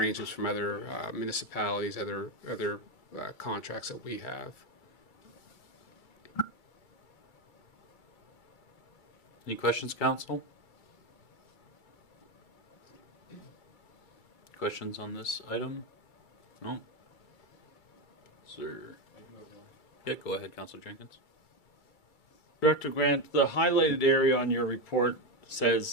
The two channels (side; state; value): right; late; 2.3 ms